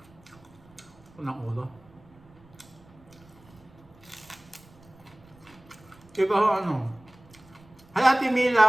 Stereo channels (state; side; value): noise; right; rumble, 26 dB below the sound